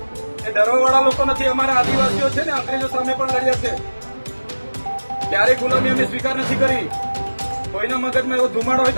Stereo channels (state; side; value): inverted; both; correlation -1.00